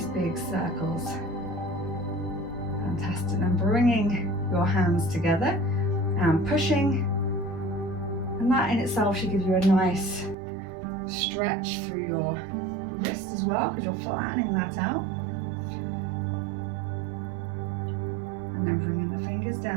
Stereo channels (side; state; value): left; drops out; at 10.4 s